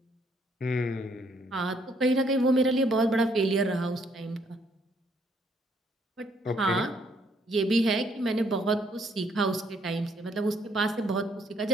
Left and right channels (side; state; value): both; normal; correlation 0.68